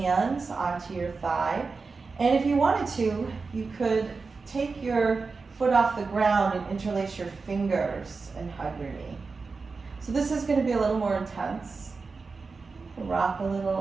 onto your thigh. And if you wanted to, you could take your foot off the ground and interlace your fingers and hug your knee. So this is going to be a little more intense. Rock a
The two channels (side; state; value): left; quieter; 4.4 dB